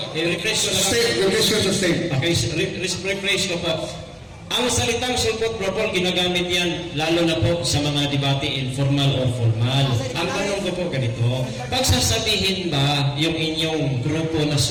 I-refresh ko lang. Sustain, your question sustain. Okay, refresh ko po. Ang salitang sulpot, Brother Paul, ginagamit yan lalo na po sa mga debate informal or formal. Ang tanong ko po ganito, pagsasabihin ba yung inyong grupo na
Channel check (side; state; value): both; identical; correlation 1.00